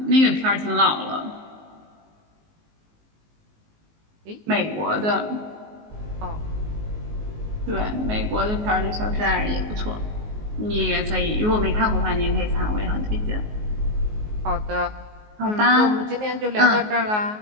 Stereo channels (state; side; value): late; left; 19 ms